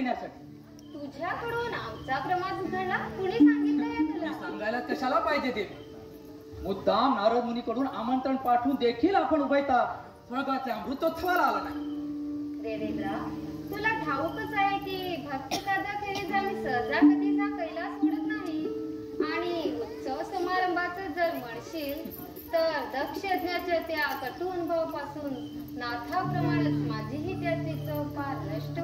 तुझ्याकडून आमचा प्रमाद घडला? कुणी सांगितलं या तुला? सांगायला कशाला पाहिजे देवी? मुद्दाम नारद मुनीकडून आमंत्रण पाठवून देखील आपण उभयता स्वर्गाच्या अमृतोत्सवाला आला नाही. देवेंद्रा तुला ठाऊकच आहे की भक्त कादाखेरीज आम्ही सहजा कधीचा कैलास सोडत नाही. आणि उत्सव समारंभाचं जर म्हणशील तर दक्ष यज्ञाच्या त्या कटू अनुभवापासून नाथाप्रमाणेच माझीही त्याची चव फार नष्ट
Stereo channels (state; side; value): identical; both; correlation 1.00